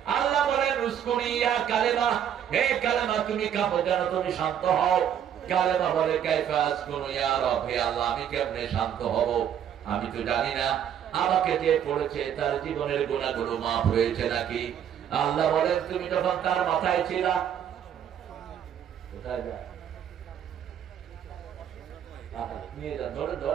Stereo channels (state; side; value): quieter; left; 9.3 dB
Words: আল্লাহ বলেন উসকুনি ইয়া কালেমা, হে কালেমা তুমি কাঁপো যেন তুমি শান্ত হও। কালেমা বলে কাইফা আসকুনু ইয়া রব, হে আল্লাহ আমি কেমনে শান্ত হব, আমি তো জানি না আমাকে যে পড়েছে তার জীবনের গুনাহগুলো মাফ হয়েছে নাকি। আল্লাহ বলেন তুমি যখন তার মাথায় ছিলা, কোথায় যায় নিয়ে যান, ধরে